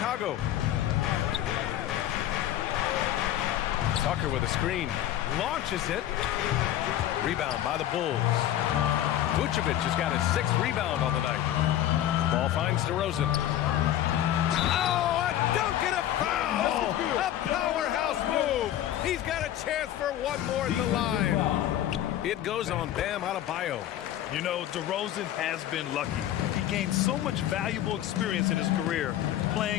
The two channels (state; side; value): quieter; right; 12.3 dB